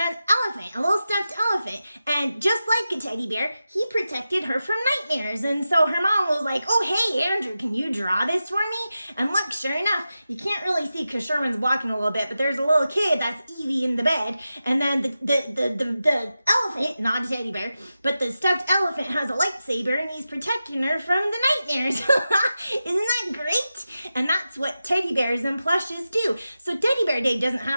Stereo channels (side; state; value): both; inverted; correlation -0.92